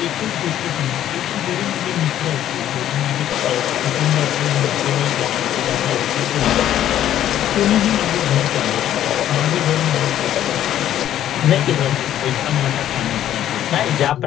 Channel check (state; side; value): quieter; right; 11.6 dB